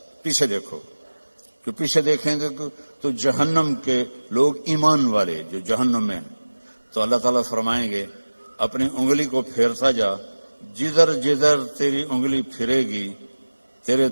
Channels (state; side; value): inverted; both; correlation -1.00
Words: پیچھے دیکھو، کہ پیچھے دیکھیں گے تو جہنم کے لوگ ایمان والے جو جہنم میں ہیں، تو اللہ تعالیٰ فرمائیں گے اپنی انگلی کو پھیرتا جا، جدھر جدھر تیری انگلی پھرے گی تیرے